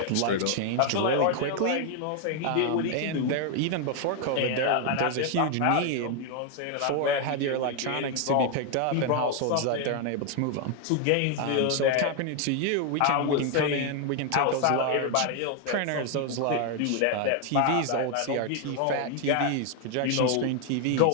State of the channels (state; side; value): different; both; correlation 0.01